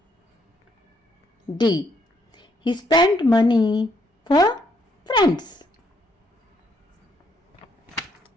D. He spent money for friends.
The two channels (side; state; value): both; normal; correlation 0.72